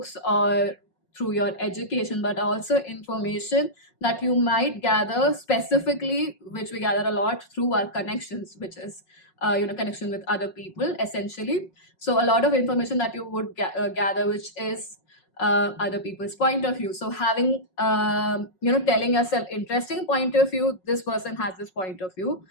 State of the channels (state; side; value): late; right; 5.4 ms